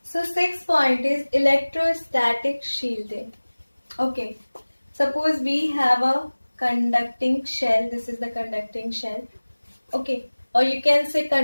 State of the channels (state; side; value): inverted; both; correlation -1.00